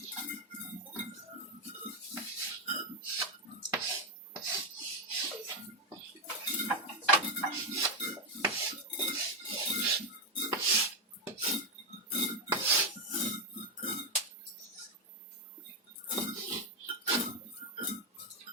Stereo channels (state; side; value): normal; both; correlation 0.05